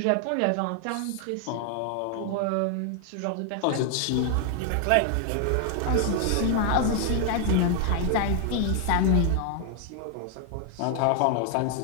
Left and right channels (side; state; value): both; different; correlation 0.00